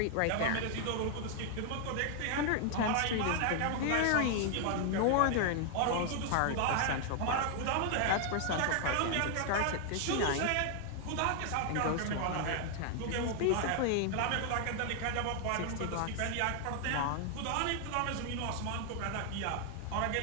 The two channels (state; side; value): different; both; correlation 0.00